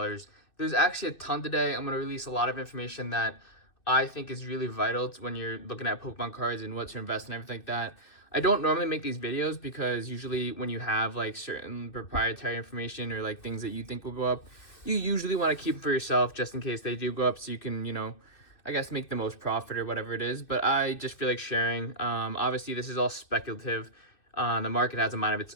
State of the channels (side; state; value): right; late; 2.6 ms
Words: There's actually a ton today. I'm going to release a lot of information that I think is really vital to when you're looking at Pokemon cards and what to invest in, everything like that. I don't normally make these videos because usually when you have like certain proprietary information or like things that you think will go up, you usually want to keep for yourself just in case they do go up so you can, I guess make the most profit or whatever it is, but I just feel like sharing. Obviously, this is all speculative. The market has a mind of